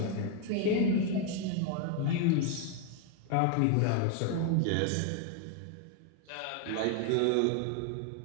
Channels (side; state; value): both; different; correlation 0.00